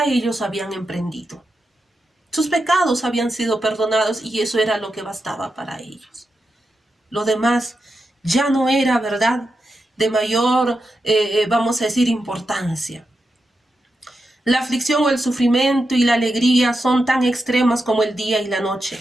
ellos habían emprendido. Sus pecados habían sido perdonados y eso era lo que bastaba para ellos. Lo demás ya no era, ¿verdad?, de mayor, vamos a decir, importancia. La aflicción o el sufrimiento y la alegría son tan extremas como el día y la noche,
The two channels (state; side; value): normal; both; correlation 0.88